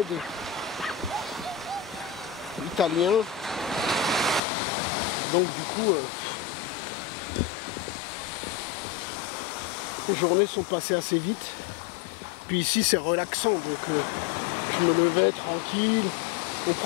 des Italiens. Donc du coup, les journées sont passées assez vite. Puis ici c'est relaxant, donc je me levais tranquille, on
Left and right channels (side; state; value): right; drops out; at 4.4 s